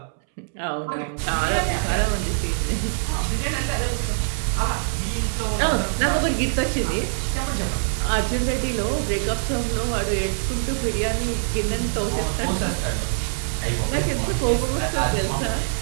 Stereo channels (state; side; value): silent; left; 63 dB below the other